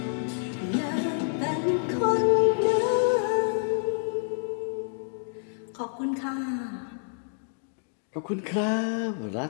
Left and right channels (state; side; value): silent; right; digital silence